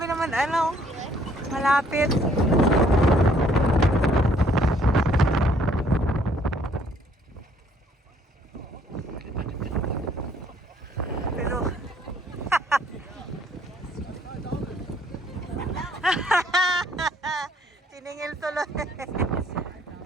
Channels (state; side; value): normal; both; correlation 0.63